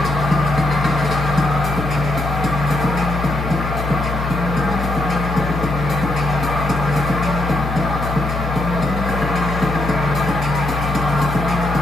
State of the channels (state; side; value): noise; left; hum, 4 dB below the sound